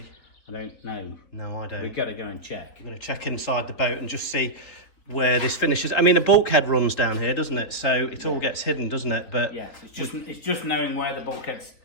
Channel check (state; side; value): late; right; 4.1 ms